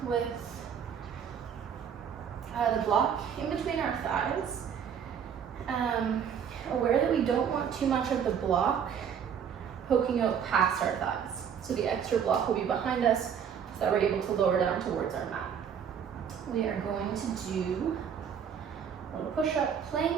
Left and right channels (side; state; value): left; quieter; 7.8 dB